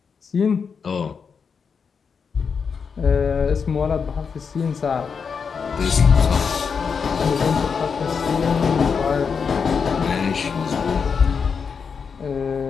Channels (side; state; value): right; quieter; 5.9 dB